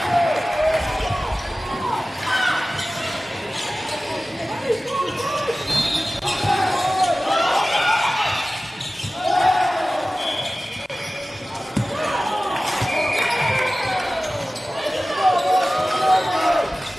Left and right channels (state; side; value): normal; both; correlation 0.96